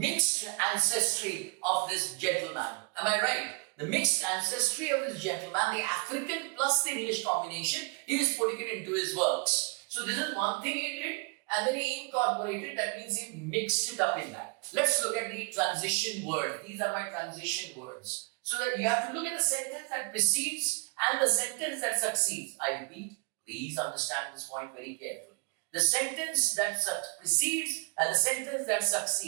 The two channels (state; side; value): quieter; left; 31.3 dB